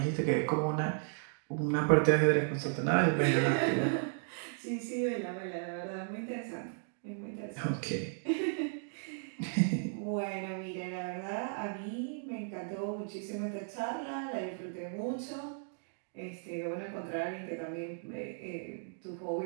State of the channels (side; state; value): left; silent; digital silence